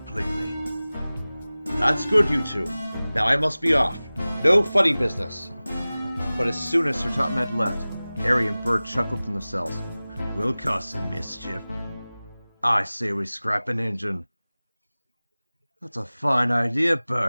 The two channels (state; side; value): inverted; both; correlation -0.98